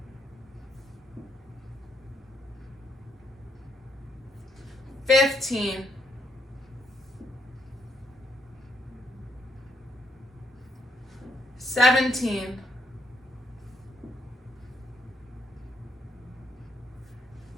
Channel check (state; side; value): normal; both; correlation 0.74